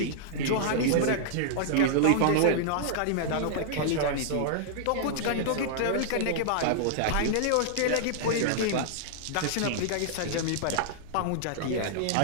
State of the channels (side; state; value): both; different; correlation -0.01